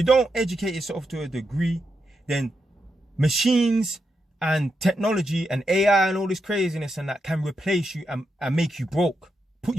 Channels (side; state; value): both; normal; correlation 0.85